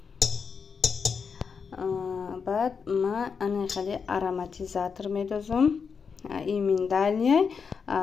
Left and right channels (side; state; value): right; quieter; 5.9 dB